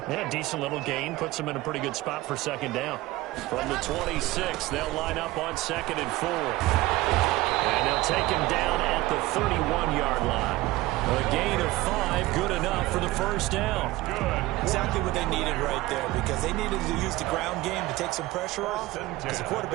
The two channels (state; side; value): quieter; left; 18.6 dB